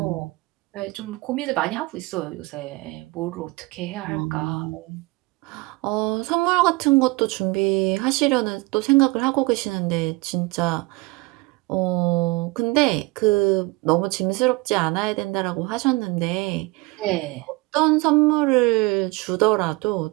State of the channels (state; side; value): quieter; left; 23.6 dB